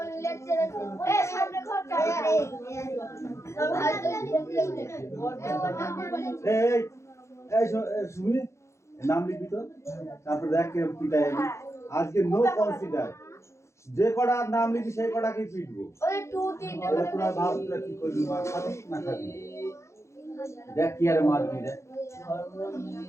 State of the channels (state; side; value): late; right; 0.14 ms